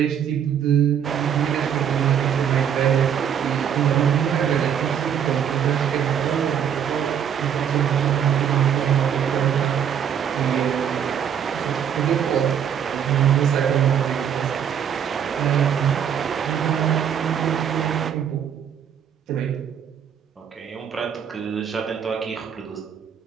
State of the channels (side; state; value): left; quieter; 8.5 dB